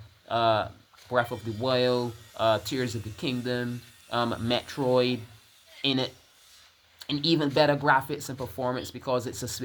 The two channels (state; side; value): identical; both; correlation 1.00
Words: Breath of the Wild, Tears of the Kingdom, Metroid in it. And even better graphics and performance because it's a